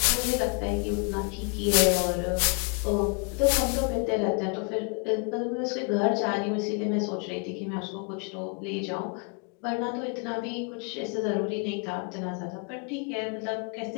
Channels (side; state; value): right; quieter; 36.1 dB